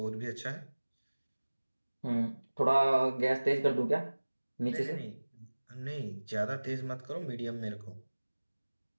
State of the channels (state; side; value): inverted; both; correlation -1.00